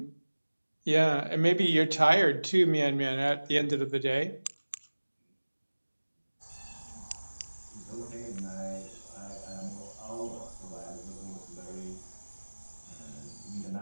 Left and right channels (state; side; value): inverted; both; correlation -1.00